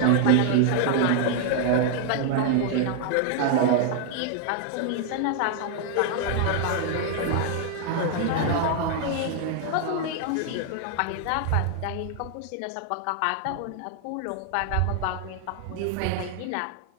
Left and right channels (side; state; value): both; different; correlation 0.00